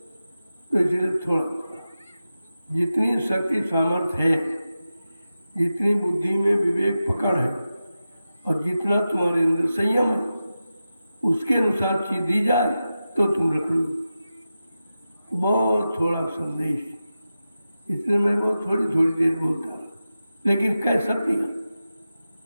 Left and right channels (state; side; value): inverted; both; correlation -0.92